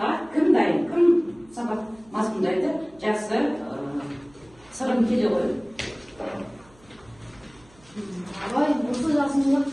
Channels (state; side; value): noise; right; hum, 28 dB below the sound